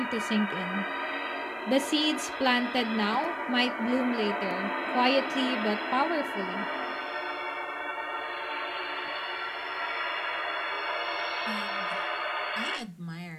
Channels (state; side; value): identical; both; correlation 1.00